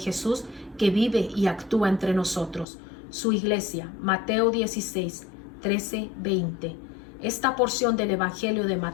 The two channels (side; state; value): right; drops out; at 2.7 s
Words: que vive y actúa entre nosotros. Su iglesia, Mateo 16, 13, 20. Esta porción del Evangelio de